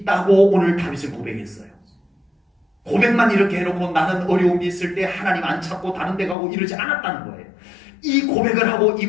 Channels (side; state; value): right; drops out; at 6.4 s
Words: 오늘 다윗은 고백했어요. 고백만 이렇게 해놓고 나는 어려움이 있을 때 하나님 안 찾고 다른 데 가고 이러지 않았다는 거예요. 이 고백을 하고 이